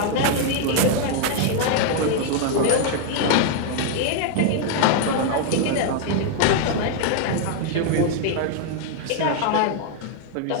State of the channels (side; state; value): both; different; correlation 0.00